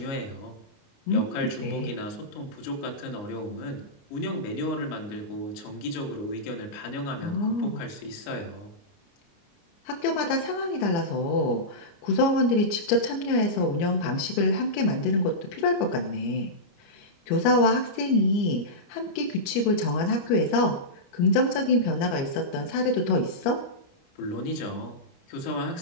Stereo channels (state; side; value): late; right; 29 ms